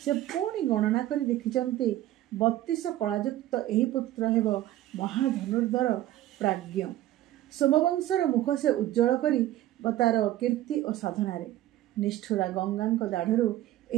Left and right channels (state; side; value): quieter; left; 14.3 dB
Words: ସେ ପୁଣି ଗଣନା କରି ଦେଖିଛନ୍ତି 32 କଳାଯୁକ୍ତ ଏହି ପୁତ୍ର ହେବ ମହାଧନୁର୍ଦ୍ଧର ପ୍ରାଜ୍ଞ। ସୋମବଂଶର ମୁଖ ସେ ଉଜ୍ଜ୍ୱଳ କରି ତାର କୀର୍ତ୍ତି ଓ ସାଧନାରେ। ନିଷ୍ଠୁରା ଗଙ୍ଗାଙ୍କ ଦାଢ଼ରୁ